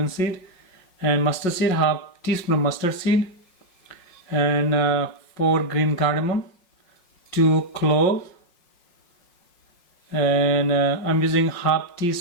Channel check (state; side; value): late; right; 5.5 ms